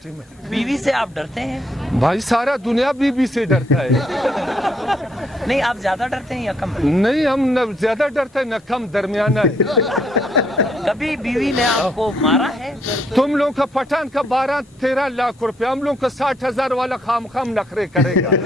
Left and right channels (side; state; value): both; normal; correlation 0.72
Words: में। बीवी से आप डरते हैं? भाई सारा दुनिया बीवी से डरता है। नहीं, आप ज्यादा डरते हैं या कम? नहीं, हम न ज्यादा डरते हैं न कम, दरमियाना है। कभी बीवी ने आपको मारा है? तुम लोग का पठान का 12-13 लाख रुपए, हम लोग का 60,000 वाला खाम नखरे करेगा।